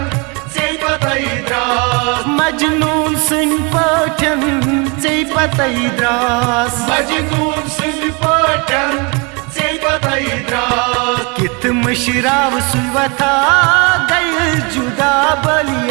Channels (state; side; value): quieter; left; 30.7 dB